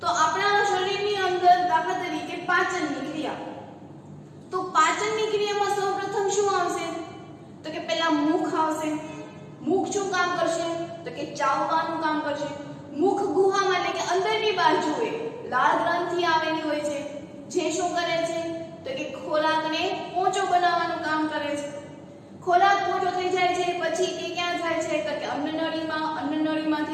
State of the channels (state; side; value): identical; both; correlation 1.00